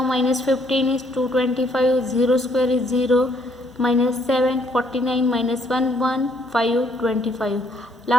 minus 15 is 225, 0 square is 0, minus 7 49, minus 1 1 5 25.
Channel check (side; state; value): both; normal; correlation 0.67